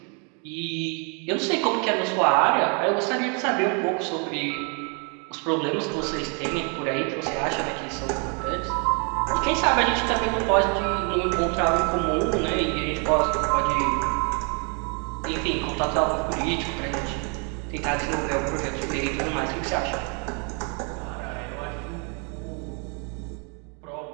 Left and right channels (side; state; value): left; quieter; 36.7 dB